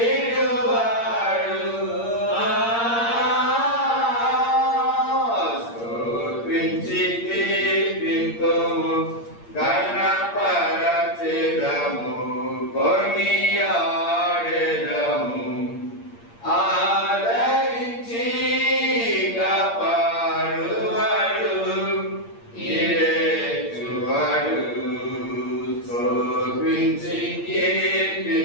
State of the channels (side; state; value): right; late; 8.6 ms